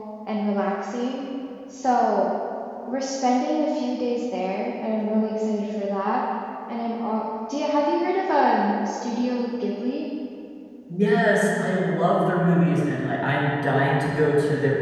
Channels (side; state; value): both; identical; correlation 1.00